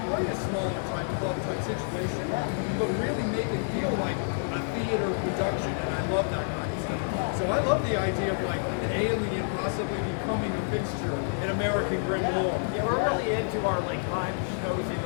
play a smaller type club type situation, but really make it feel like a theater production, and I love that kind of stuff. So I love the idea of like an alien possibly becoming a fixture in American Grim Lore. Yeah, we're really into our like live shows in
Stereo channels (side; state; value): right; silent; digital silence